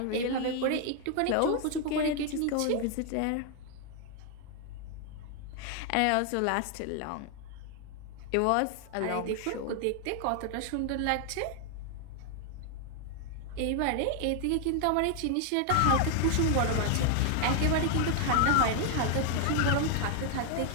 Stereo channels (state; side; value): different; both; correlation 0.00